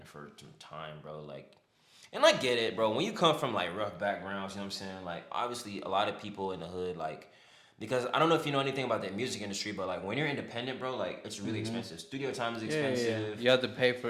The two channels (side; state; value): both; identical; correlation 1.00